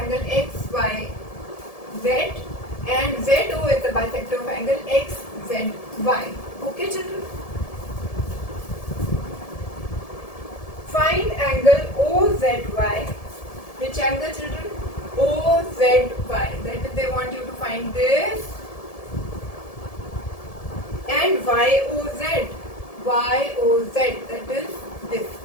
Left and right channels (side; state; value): right; late; 1.7 ms